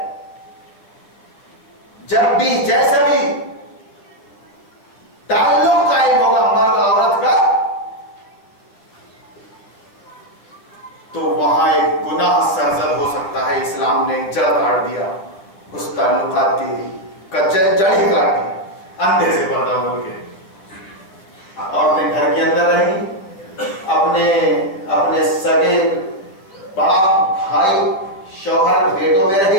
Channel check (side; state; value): right; late; 10 ms